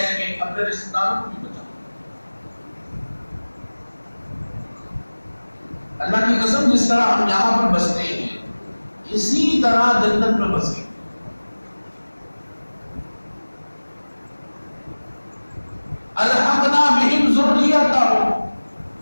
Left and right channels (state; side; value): inverted; both; correlation -1.00